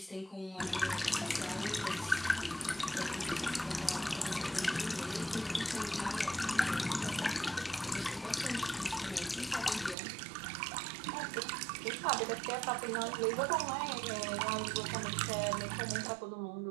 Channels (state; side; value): drops out; left; at 10.0 s